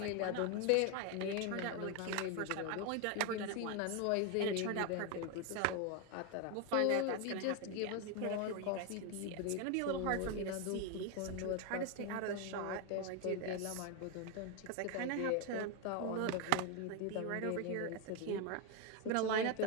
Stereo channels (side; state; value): both; different; correlation 0.01